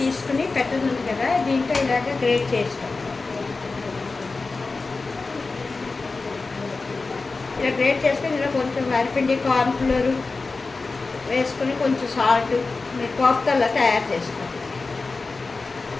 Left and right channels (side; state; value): right; quieter; 3.9 dB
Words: పెట్టదుంది కదా, దీంట్లో ఇలాగ గ్రేట్ చేస్తాం. ఇలా గ్రేట్ చేసుకొని ఇలా కొంచెం వరిపిండి, కార్న్ఫ్లోర్ వేసుకొని కొంచెం సాల్ట్ మీరు కోఫ్తాలో తయారు చేసుకోండి.